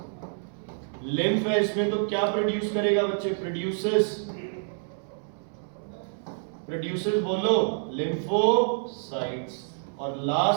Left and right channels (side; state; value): left; silent; 60 dB below the other